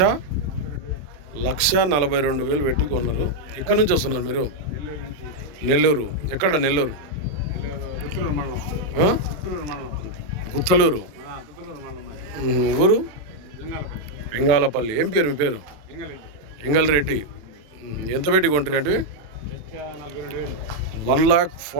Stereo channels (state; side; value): late; left; 27 ms